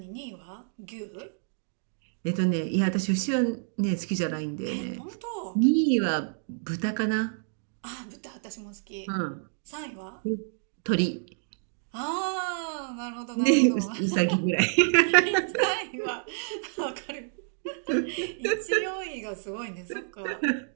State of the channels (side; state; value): left; silent; digital silence